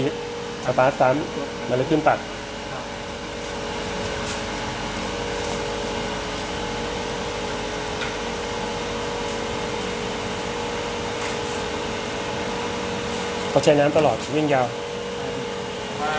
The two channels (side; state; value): both; identical; correlation 1.00